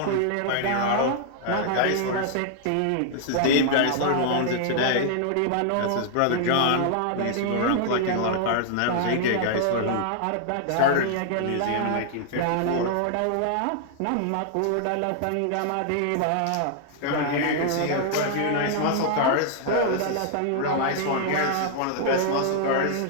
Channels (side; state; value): both; different; correlation -0.01